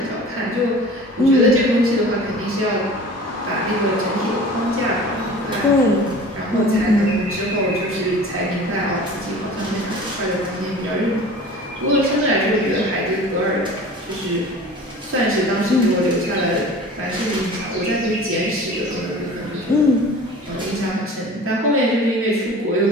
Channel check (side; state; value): both; normal; correlation 0.41